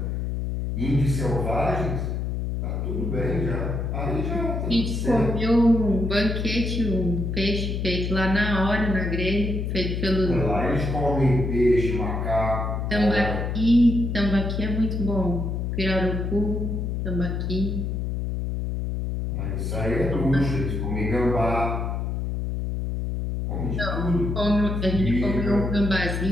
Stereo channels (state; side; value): noise; left; hum, 2 dB below the sound